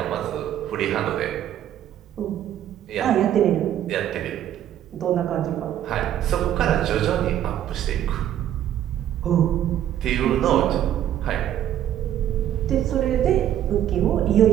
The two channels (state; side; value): quieter; left; 11.2 dB